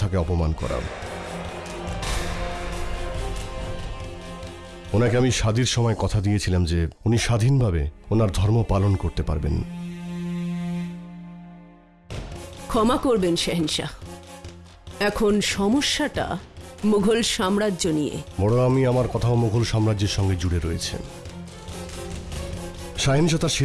অপমান করা। ওনাকে আমি শাদীর সময় কথা দিয়েছিলাম যে উনি স্বাধীনভাবে ওনার ধর্ম পালন করতে পারবেন। ক্ষমা করবেন শেহেনশাহ, এখন সমস্যাটা মুঘল সাম্রাজ্য নিয়ে। বড় আমি আমার কথাও মুঘল সাম্রাজ্যের সঙ্গে জুড়ে রয়েছে। শাহেনশাহ তার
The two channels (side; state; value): both; identical; correlation 1.00